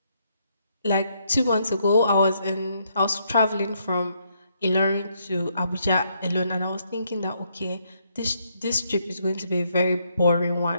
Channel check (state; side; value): inverted; both; correlation -0.74